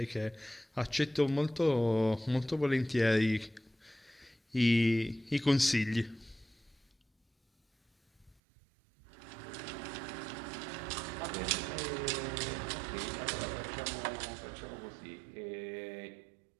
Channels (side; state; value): left; drops out; at 8.3 s